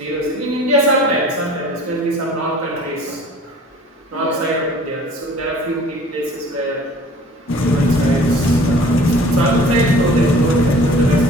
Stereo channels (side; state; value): both; normal; correlation 0.48